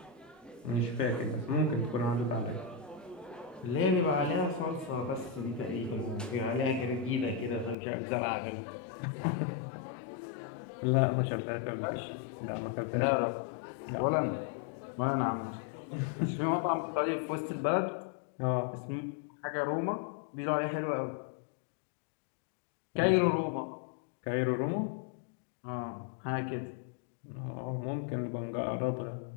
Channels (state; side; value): drops out; right; at 7.8 s